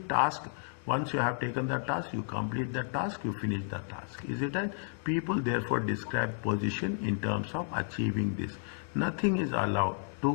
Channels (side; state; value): right; silent; 56 dB below the other